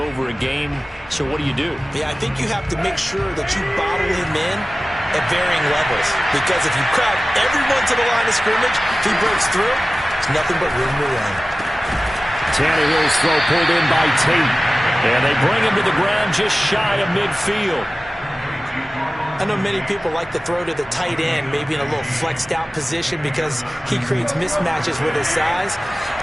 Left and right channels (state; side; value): normal; both; correlation 0.96